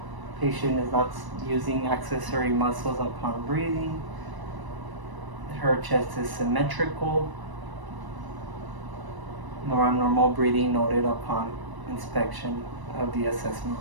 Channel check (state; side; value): late; left; 1.0 ms